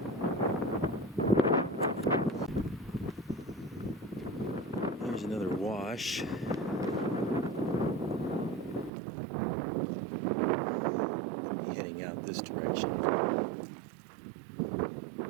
Here's another wash. We'll be heading out this direction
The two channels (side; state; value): left; drops out; at 8.9 s